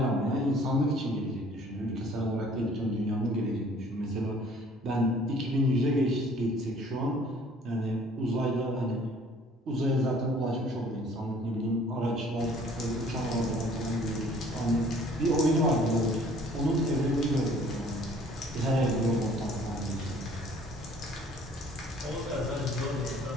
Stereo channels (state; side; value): normal; both; correlation 0.55